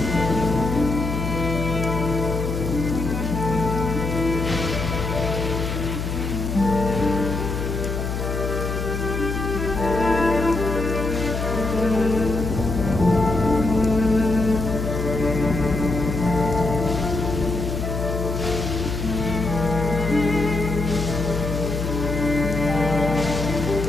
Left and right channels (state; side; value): noise; left; hum, 3 dB below the sound